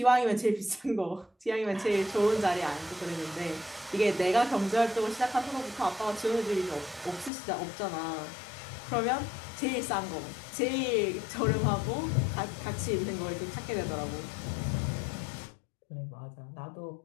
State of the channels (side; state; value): right; drops out; at 7.3 s